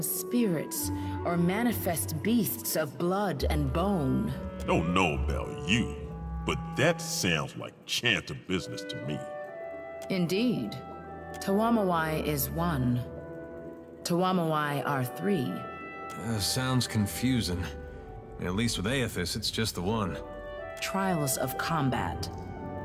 spirits or manifest beasts of blood and bone. Don't know about you, but that sounds like chanter business to me. Indeed. Tuwamawai is 1. Tuwamawai are 3. Sounds confusing. At least with Aethys, it's just the one. Trials of combat.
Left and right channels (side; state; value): both; identical; correlation 1.00